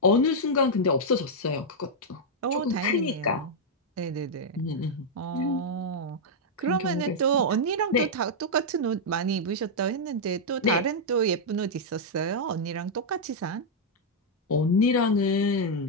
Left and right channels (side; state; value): both; normal; correlation -0.04